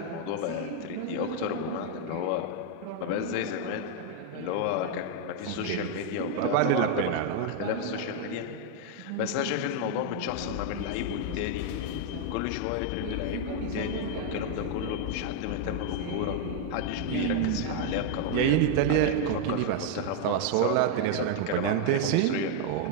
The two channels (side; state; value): both; different; correlation 0.00